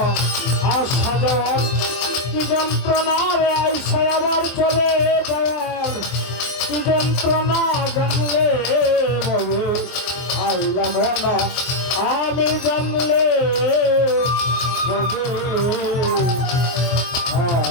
আশা যাওয়ার কি যন্ত্রণা রে আইসা আবার চলে যাওয়ার কি যন্ত্রণা জানলে ববে আইলাম না আমি জানলে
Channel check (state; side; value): late; right; 24 ms